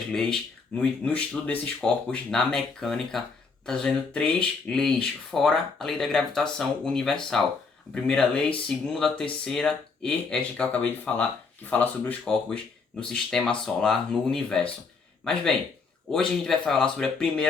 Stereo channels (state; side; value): quieter; right; 4.7 dB